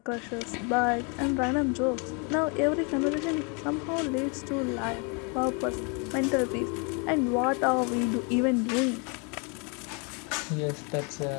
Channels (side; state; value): right; quieter; 34.1 dB